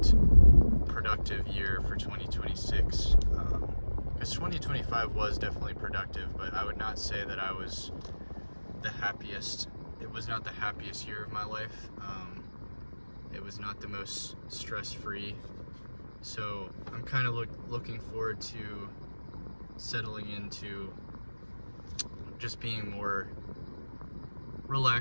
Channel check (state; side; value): inverted; both; correlation -1.00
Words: productive year for 2026. Because 2025 was definitely productive, but I would not say that I was the happiest. It was not the happiest year of my life. It was not the most stress-free. So I'm kind of looking forward to settling into just being more